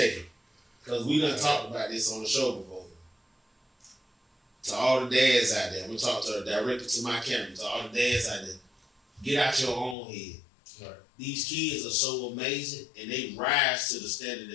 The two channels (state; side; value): drops out; right; at 10.0 s